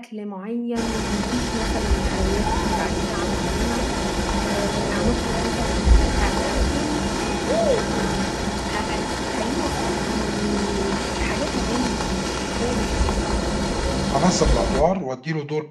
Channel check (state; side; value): identical; both; correlation 1.00